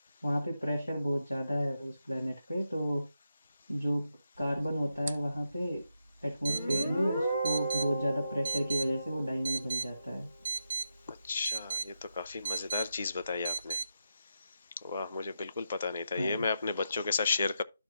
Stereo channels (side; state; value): both; inverted; correlation -0.85